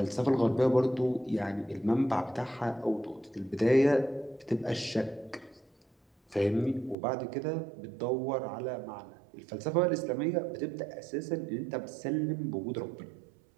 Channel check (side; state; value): left; drops out; at 7.0 s